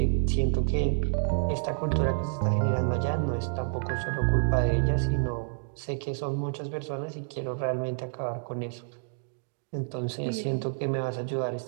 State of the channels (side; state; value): left; silent; digital silence